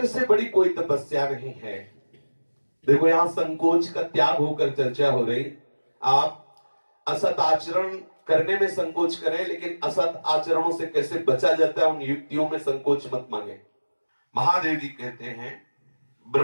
से बड़ी कोई तपस्या नहीं है। देखो, यहां संकोच का त्याग होकर चर्चा हो रही। आप असत आचरण करने में संकोच करें, लेकिन असत आचरणों से कैसे बचा जाता है उन युक्तियों में संकोच मत मांगे। महादेव जी कहते हैं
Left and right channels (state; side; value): inverted; both; correlation -1.00